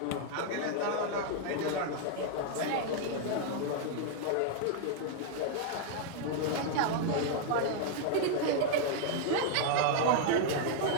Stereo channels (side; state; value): both; different; correlation 0.00